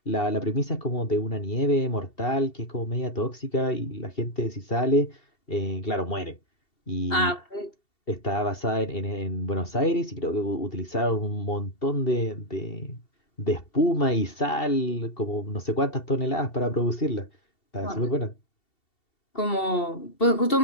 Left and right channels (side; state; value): right; late; 2.7 ms